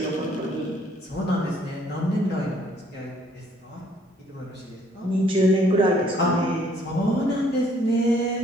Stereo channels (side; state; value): both; normal; correlation 0.63